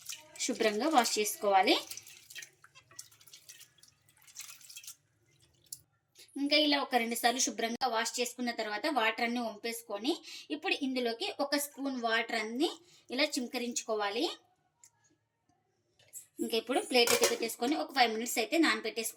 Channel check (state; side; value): identical; both; correlation 1.00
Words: శుభ్రంగా వాష్ చేసుకోవాలి. ఇంకా ఇలా ఒక 2 సార్లు శుభ్రంగా వాష్ చేసుకున్న తర్వాత వాటర్ అన్ని వంపేసుకొని ఇప్పుడు ఇందులోకి 1 స్పూన్ వాటర్ అన్ని ఇలా చిమ్కరించుకోవాలి. ఇంకా ఇప్పుడు ప్లేట్ అయితే పెట్టేసుకొని ఒక 5 మినిట్స్ అయితే